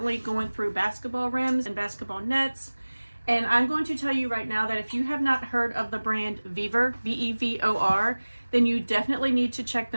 going through basketball rims and basketball nets. And I'm going to tell you right now that if you have not heard of the brand VEVOR, V-E-V-O-R, then you definitely need to check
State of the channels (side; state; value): both; inverted; correlation -1.00